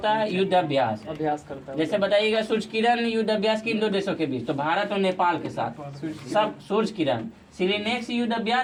है युद्ध अभ्यास करता है। जैसे बताइएगा सूर्य किरण युद्ध अभ्यास किन दो देशों के बीच? तो भारत और नेपाल के साथ सब सूर्य किरण। सिरिनेक्स युद्ध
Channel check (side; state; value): both; identical; correlation 1.00